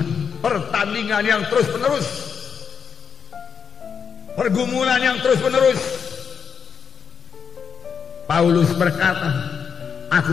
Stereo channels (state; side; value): quieter; right; 6.6 dB